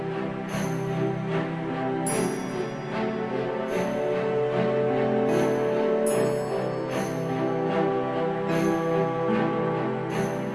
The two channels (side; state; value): both; identical; correlation 1.00